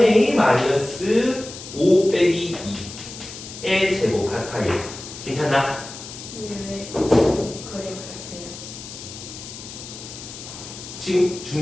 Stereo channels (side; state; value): left; noise; hiss, 12 dB below the sound